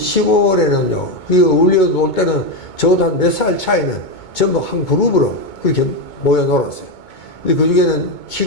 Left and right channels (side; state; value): right; late; 2.2 ms